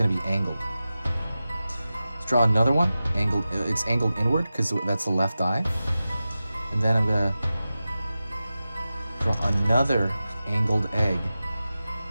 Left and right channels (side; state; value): both; inverted; correlation -0.94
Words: be angled. Let's draw another one. Angled. It's angled inward because that's the left eye. And then I'm gonna draw another angled egg